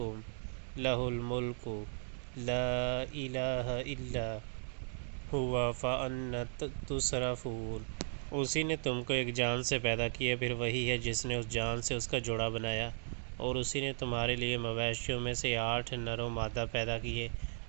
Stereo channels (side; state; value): left; silent; digital silence